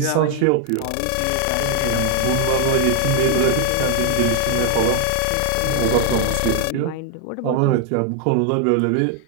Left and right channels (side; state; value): both; different; correlation 0.00